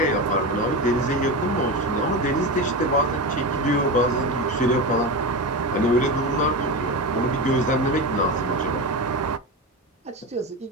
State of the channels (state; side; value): normal; both; correlation 0.21